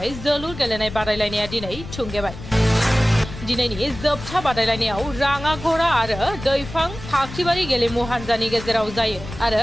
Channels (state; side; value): noise; left; rumble, 12 dB below the sound